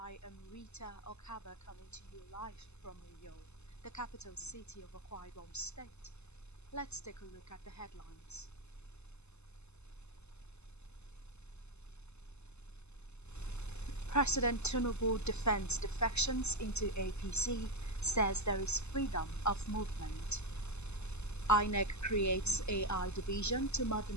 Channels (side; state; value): right; late; 0.81 ms